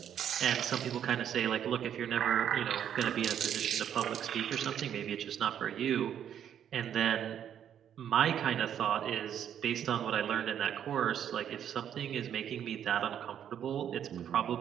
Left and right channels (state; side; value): quieter; left; 9.4 dB